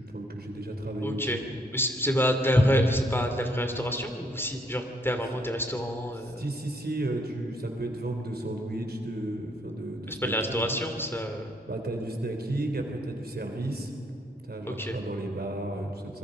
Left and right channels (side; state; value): both; normal; correlation 0.70